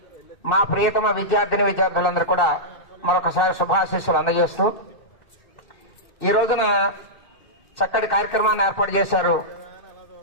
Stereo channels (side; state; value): right; late; 2.6 ms